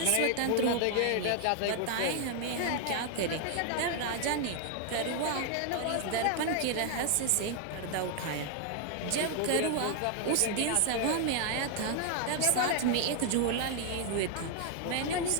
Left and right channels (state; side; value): different; both; correlation 0.00